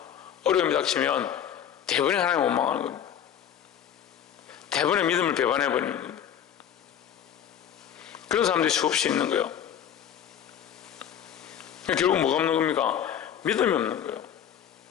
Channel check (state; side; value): quieter; right; 9.3 dB